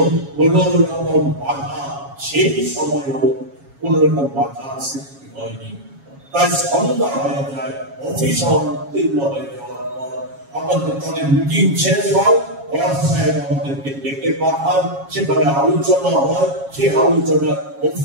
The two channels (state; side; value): late; left; 7.3 ms